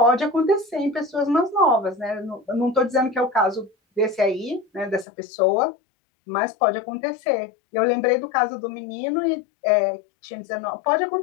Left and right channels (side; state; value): right; drops out; at 5.1 s